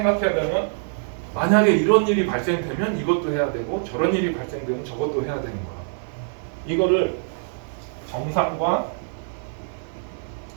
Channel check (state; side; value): silent; left; digital silence